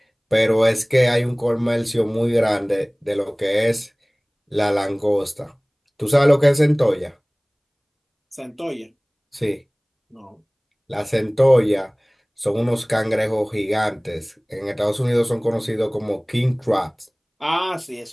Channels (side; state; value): both; identical; correlation 1.00